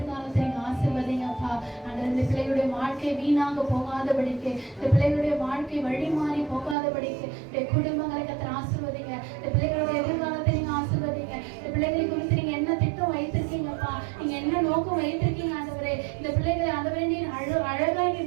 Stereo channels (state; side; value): drops out; left; at 6.8 s